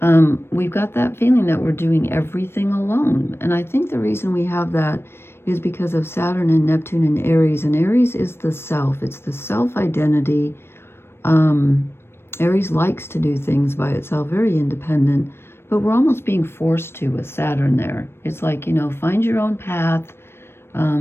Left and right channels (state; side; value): late; right; 0.12 ms